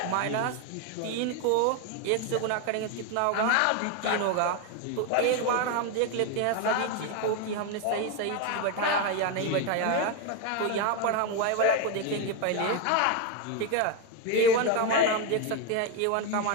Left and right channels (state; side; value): different; both; correlation 0.02